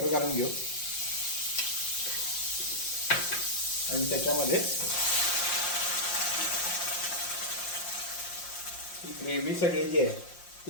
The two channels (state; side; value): late; right; 5.7 ms